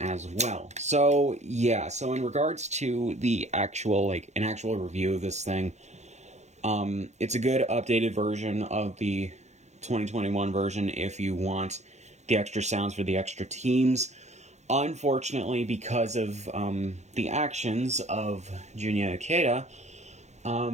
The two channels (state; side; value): late; left; 0.33 ms